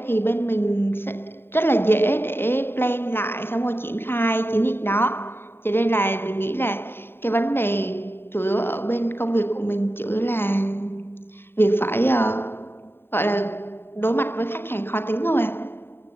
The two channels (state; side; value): late; right; 0.11 ms